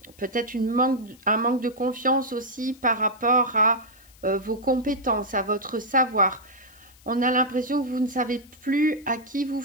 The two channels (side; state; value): left; noise; hiss, 27 dB below the sound